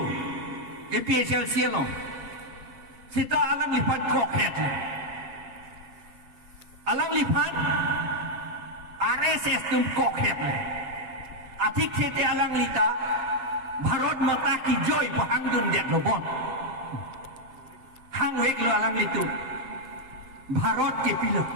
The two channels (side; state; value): left; late; 7.6 ms